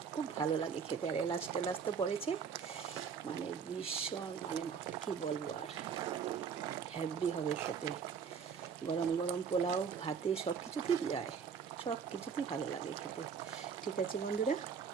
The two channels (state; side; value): quieter; left; 6.6 dB